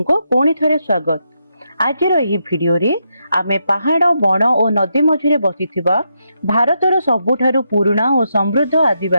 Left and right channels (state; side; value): inverted; both; correlation -0.82